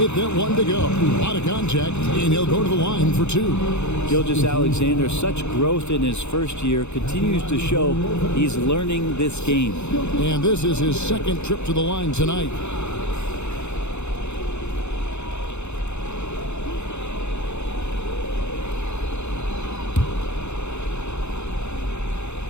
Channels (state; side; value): late; right; 0.82 ms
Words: that one to go. A lot of contact, and he'll go to the line for 2. Gilgeous-Alexander, such growth in his first year, continues to show he's learning this game. And this is his second trip to the line tonight.